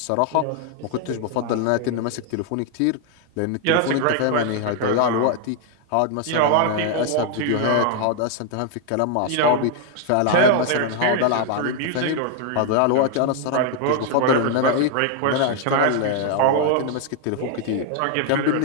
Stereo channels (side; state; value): both; different; correlation 0.00